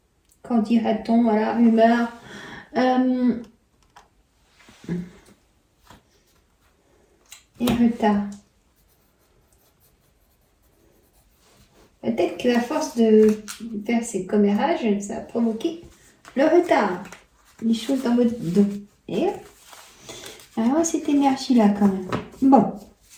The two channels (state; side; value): identical; both; correlation 1.00